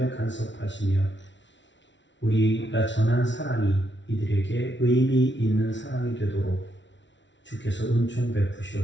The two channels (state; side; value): late; right; 0.54 ms